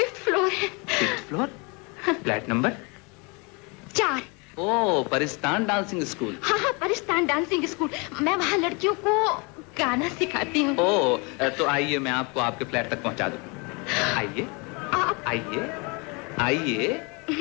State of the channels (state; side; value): quieter; right; 30.4 dB